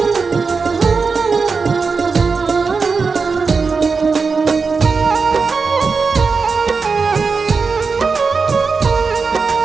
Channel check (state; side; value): quieter; left; 4.8 dB